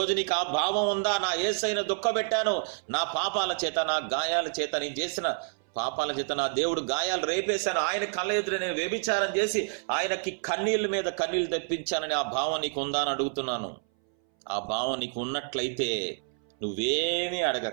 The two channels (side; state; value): left; silent; 59 dB below the other